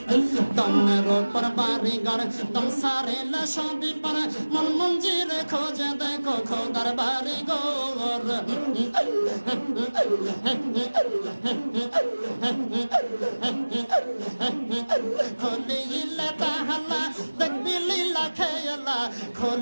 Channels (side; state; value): both; inverted; correlation -1.00